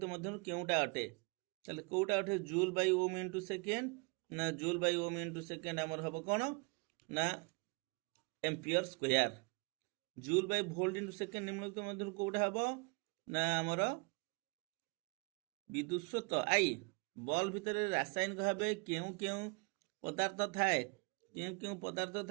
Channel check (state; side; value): quieter; left; 30.4 dB